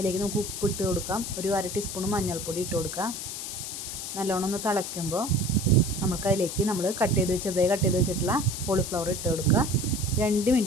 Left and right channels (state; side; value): noise; left; hiss, 6 dB below the sound